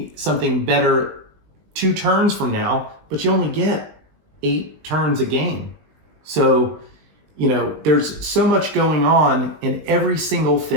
something better 2 turns from now, but you only get 8 turns a game. So, there's so much going on, and every single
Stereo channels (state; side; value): late; left; 19 ms